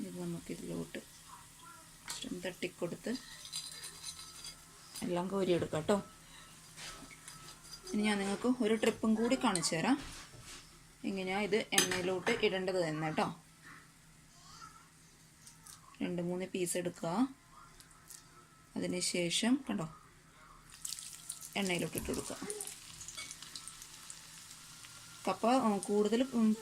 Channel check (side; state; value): both; identical; correlation 1.00